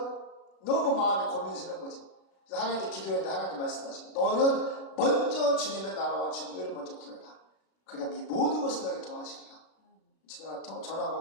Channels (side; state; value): right; late; 36 ms